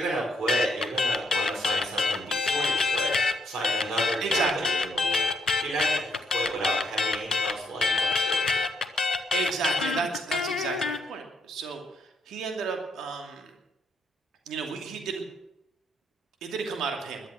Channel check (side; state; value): both; normal; correlation 0.74